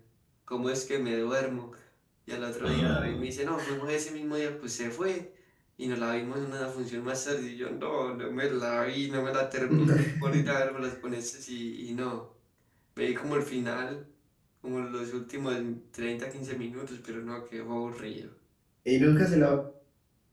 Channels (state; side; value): identical; both; correlation 1.00